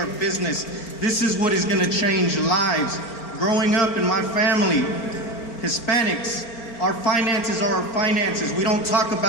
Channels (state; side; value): late; right; 4.4 ms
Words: business, this is what is going to change lives. Growing up in my family, Hispanics, our finances are our finances. We don't talk